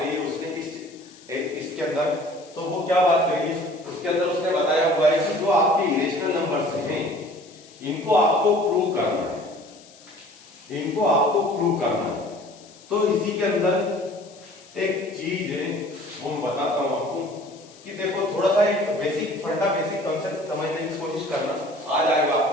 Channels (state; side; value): noise; left; hiss, 24 dB below the sound